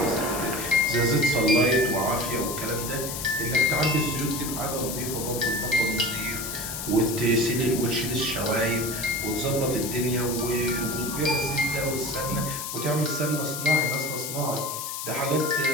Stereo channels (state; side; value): noise; left; hiss, 6 dB below the sound